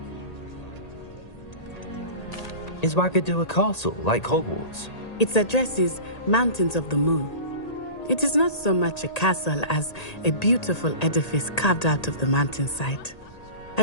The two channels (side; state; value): right; late; 1.8 ms